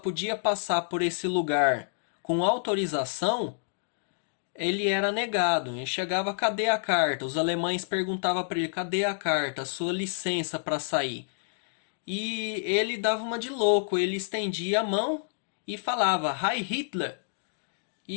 passar por esse lugar com autorização, ele era negado. Ele chegava, cadê a carta? Os alemães perguntavam para ele, cadê a carta? Sua licença para sair. E ele dava uma de louco, ele estendia a mão e falava, Heil Hitler.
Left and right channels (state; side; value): silent; right; digital silence